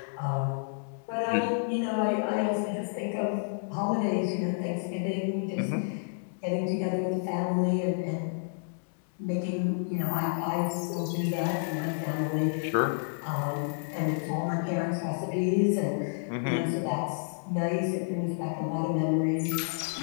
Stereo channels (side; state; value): right; silent; digital silence